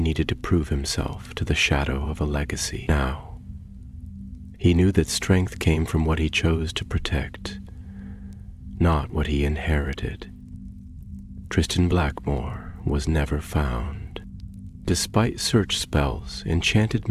needed to prove himself to the shadow of a legacy. Now he knew that strength came from what he chose to protect, not what he inherited. Tristan Blackmore was never found. Despite search spells, enchanted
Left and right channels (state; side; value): identical; both; correlation 1.00